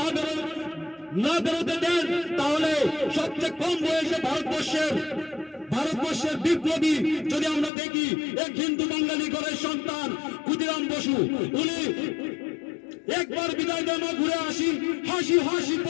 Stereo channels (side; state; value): right; drops out; at 7.7 s